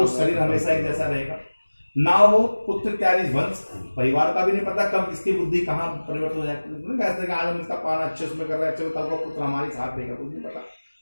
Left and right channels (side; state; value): both; inverted; correlation -1.00